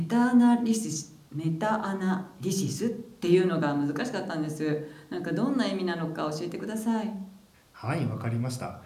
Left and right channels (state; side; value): identical; both; correlation 1.00